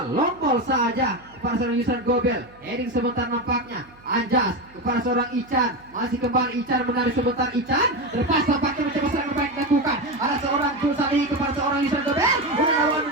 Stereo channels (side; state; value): right; noise; hum, 26 dB below the sound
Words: Long ball saja kepada seorang Yusran Gobel. Heading sebentar nampaknya. Anjas kepada seorang Ican. Masih kembali Ican menarik sebentar. Ican lepas tampaknya mencoba serangan baik dilakukan. Ada seorang Julsali kepada seorang Yusran Gobel.